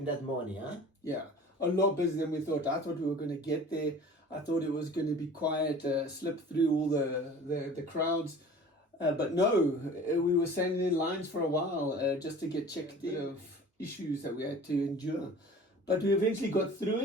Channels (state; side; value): normal; both; correlation 0.43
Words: that morning, huh? Yeah, a lot busier than we thought. I thought we were going to get there. I thought it was going to be quiet, slip through all the crowds. But no, we were standing in lines for a while just to get checked of issues that we had to endure. But we eventually got through